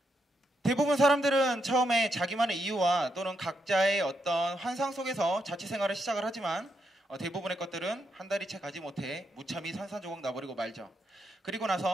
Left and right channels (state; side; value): normal; both; correlation 0.81